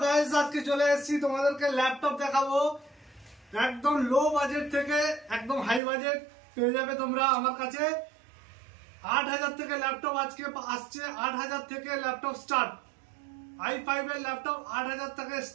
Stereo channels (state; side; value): drops out; left; at 5.8 s